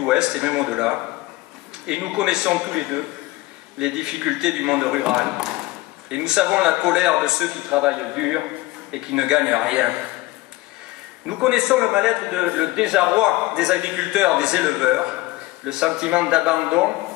et même au-delà. Et nous connaissons tous les deux les difficultés du monde rural. Et nous savons la colère de ceux qui travaillent dur et qui ne gagnent rien. Nous connaissons le mal-être, le désarroi des agriculteurs, des éleveurs, le sentiment d'abandon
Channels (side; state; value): right; quieter; 19.1 dB